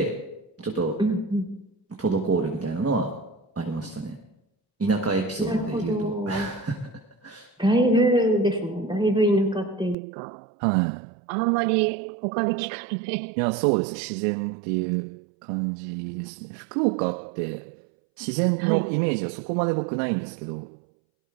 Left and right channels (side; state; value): left; drops out; at 10.0 s